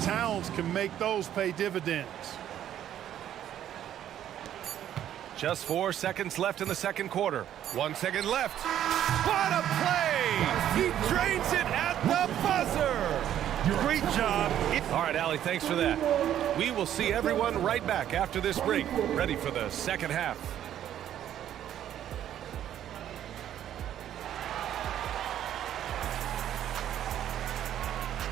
Towns can make those pay dividends. Just 4 seconds left in the second quarter. 1 second left. What a play! He drains it at the buzzer! Great job. All right, Allie, thanks for that. We will see everyone right back after this break, ready for the second half.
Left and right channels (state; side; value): quieter; left; 11.0 dB